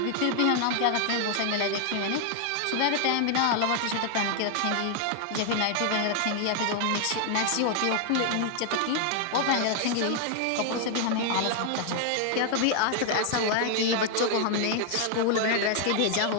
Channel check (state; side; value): different; both; correlation 0.00